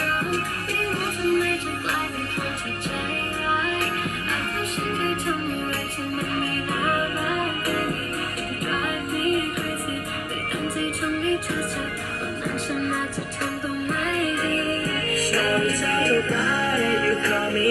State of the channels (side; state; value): both; identical; correlation 1.00